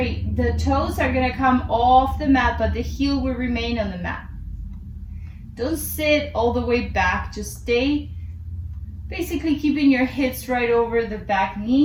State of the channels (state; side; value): identical; both; correlation 1.00